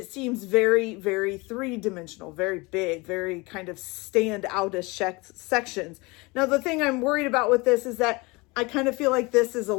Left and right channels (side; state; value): right; quieter; 25.1 dB